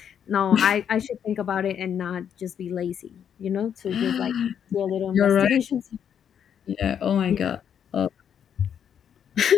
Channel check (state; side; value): quieter; right; 8.5 dB